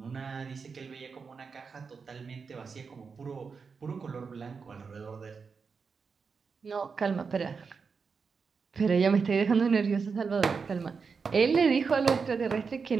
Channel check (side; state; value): left; quieter; 5.3 dB